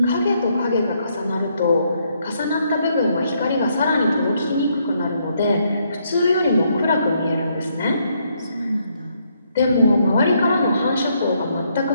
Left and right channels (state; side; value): inverted; both; correlation -0.73